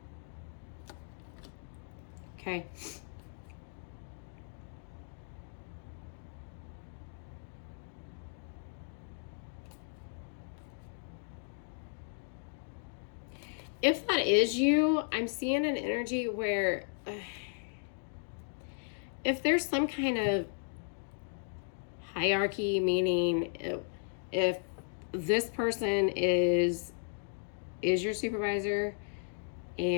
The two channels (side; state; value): right; silent; digital silence